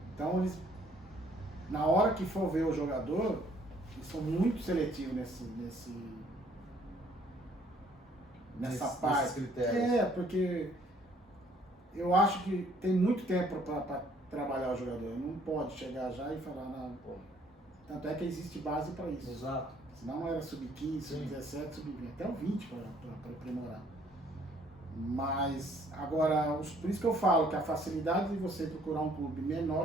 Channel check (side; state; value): both; normal; correlation 0.62